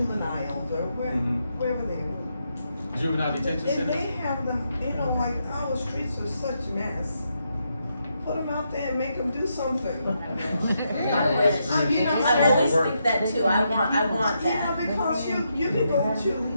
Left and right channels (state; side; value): inverted; both; correlation -0.81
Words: or Mhm. wherever they are. Juvenile detention And center. they have them, you know, like our streets are such mess. Put them out there and make them do something. I wish. You know, I always Work. think that too. I want Yeah, that. because you can go to,